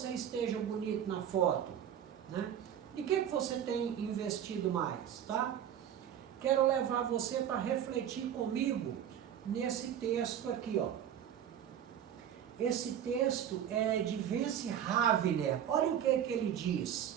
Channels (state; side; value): quieter; left; 9.7 dB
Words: esteja bonito na foto, né? E o que você tem investido mais, tá? Quero levar você para refletir comigo nesse texto aqui, ó. Esse texto é de Vance Havner. Olha o que ele